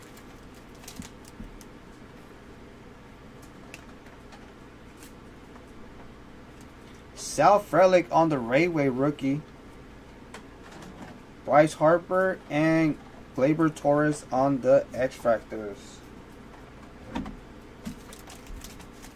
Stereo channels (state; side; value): identical; both; correlation 1.00